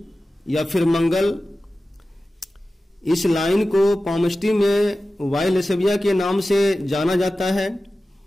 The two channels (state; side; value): normal; both; correlation 0.95